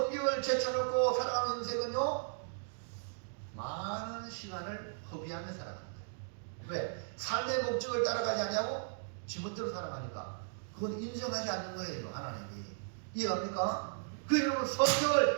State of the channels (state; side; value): silent; left; digital silence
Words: 제쳐놓고 살아가는 인생은요, 많은 시간을 허비하며 살아가는 거예요. 왜? 삶의 목적을 따라가지 않냐고? 지멋대로 살아가니까. 그건 인정하지 않는 거예요, 하나님이. 이해갑니까? 그 여러분